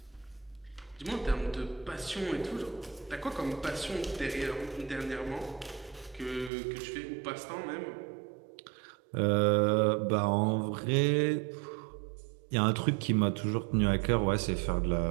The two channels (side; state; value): left; drops out; at 6.5 s